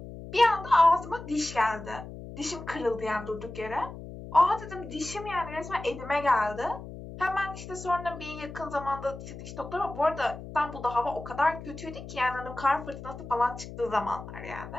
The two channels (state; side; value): noise; left; hum, 12 dB below the sound